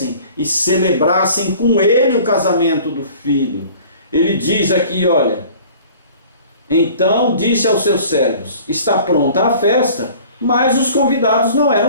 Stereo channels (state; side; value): inverted; both; correlation -0.48